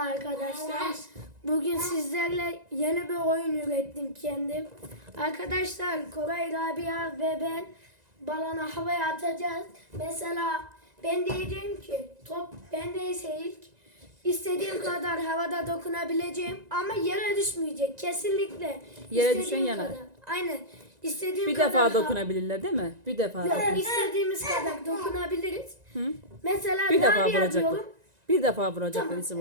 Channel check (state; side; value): late; left; 1.9 ms